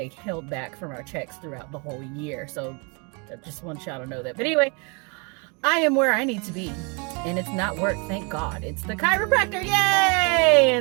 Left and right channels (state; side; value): quieter; left; 33.0 dB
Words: held back from our checks throughout the whole year. So I just want y'all to know that. But anyway, I am where I need to be, and it's not work, thank God. It's the chiropractor, yay!